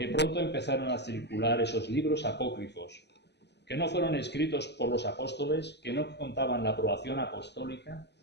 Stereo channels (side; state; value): right; late; 0.50 ms